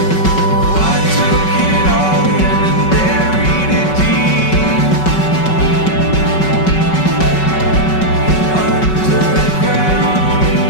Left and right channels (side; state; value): right; late; 5.3 ms